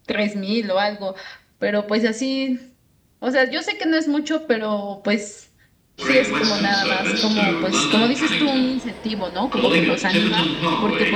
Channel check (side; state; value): both; identical; correlation 1.00